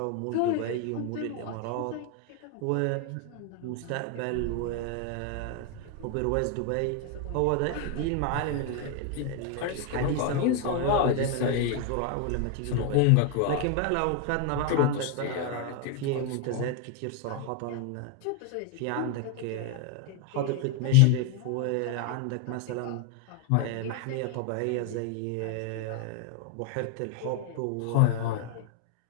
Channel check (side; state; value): both; different; correlation 0.01